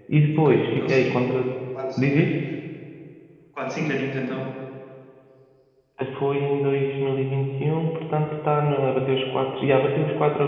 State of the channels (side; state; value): both; identical; correlation 1.00